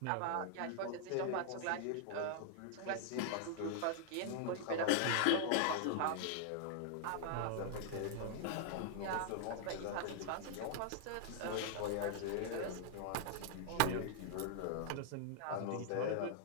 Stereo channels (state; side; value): different; both; correlation -0.01